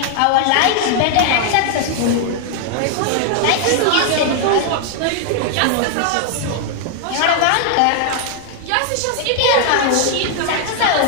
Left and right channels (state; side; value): different; both; correlation 0.00